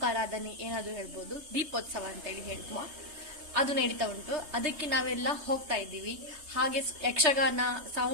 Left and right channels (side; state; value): left; late; 3.3 ms